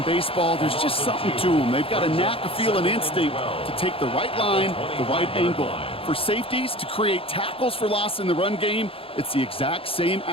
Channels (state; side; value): late; right; 0.27 ms